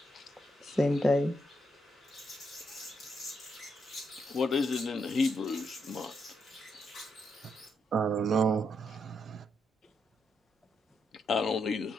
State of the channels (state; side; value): normal; both; correlation 0.80